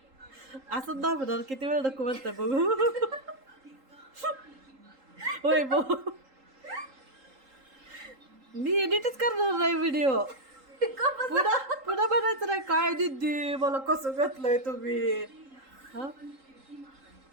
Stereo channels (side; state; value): left; late; 3.8 ms